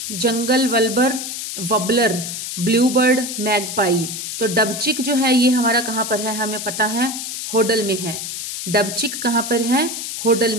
जंगल वबलर, ब्लूबर्ड, मैगपाई। तो डबचिक जो है ये हमारा कहां पर है? हमें पता है होडल में है। डबचिक कहां पर है? होडल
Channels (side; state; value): left; noise; hiss, 6 dB below the sound